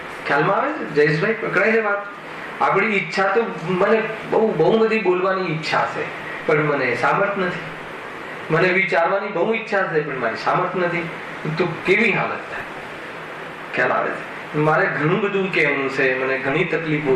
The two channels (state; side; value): identical; both; correlation 1.00